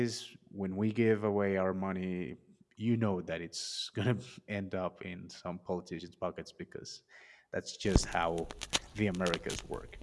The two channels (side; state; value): both; identical; correlation 1.00